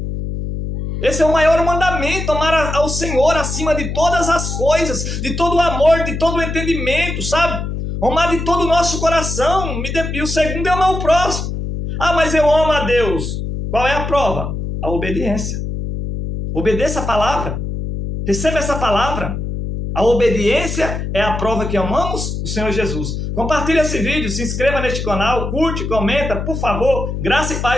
Esse é o maior mandamento, amar ao Senhor acima de todas as coisas, de todo o amor, de todo o entendimento, sabe? Amar de todo o nosso coração. E o segundo é amar o próximo. Ah, mas eu amo a Deus. Qual é a prova? A obediência. Obedeça a palavra. Receba essa palavra. A obediência é a prova que amamos o Senhor Jesus. Compartilhe esse vídeo, se inscreva neste canal, curte, comenta, por favor. Graça e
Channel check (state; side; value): noise; left; hum, 4 dB below the sound